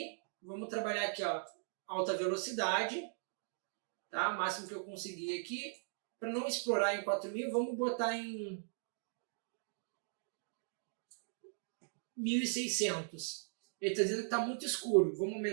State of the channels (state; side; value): silent; left; digital silence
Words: vamos trabalhar aqui, ó, alta velocidade, tá? O máximo que eu conseguir aqui. Para não explorar em 4.000, vamos botar em 1.600. Ele está dizendo que está muito escuro. Vamos